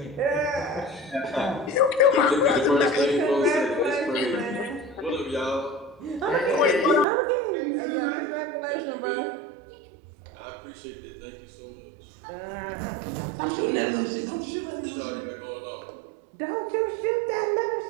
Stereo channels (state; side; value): drops out; left; at 7.1 s